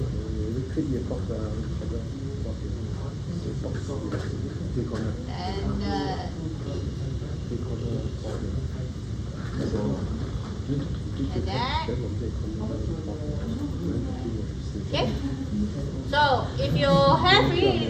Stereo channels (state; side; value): identical; both; correlation 1.00